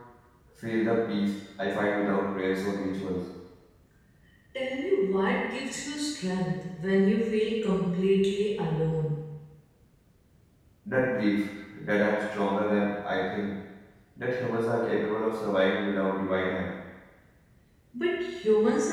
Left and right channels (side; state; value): both; identical; correlation 1.00